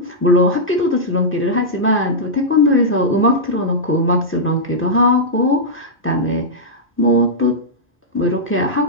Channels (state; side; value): normal; both; correlation -0.09